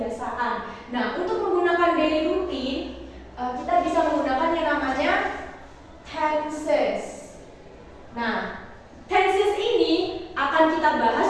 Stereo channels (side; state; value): both; identical; correlation 1.00